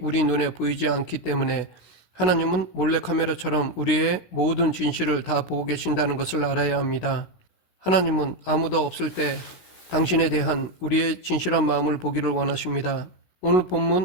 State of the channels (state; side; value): late; right; 16 ms